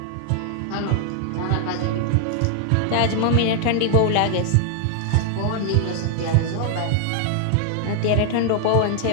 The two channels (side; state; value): both; different; correlation 0.00